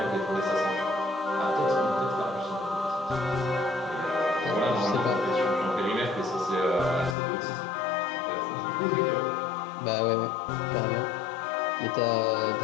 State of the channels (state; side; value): drops out; right; at 7.2 s